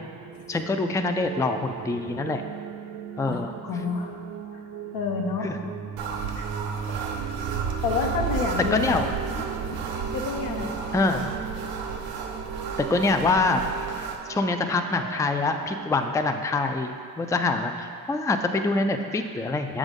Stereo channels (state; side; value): normal; both; correlation 0.42